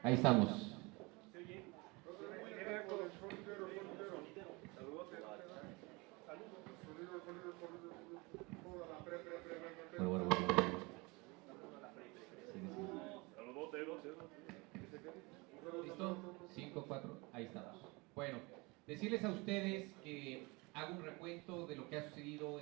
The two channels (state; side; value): quieter; left; 26.1 dB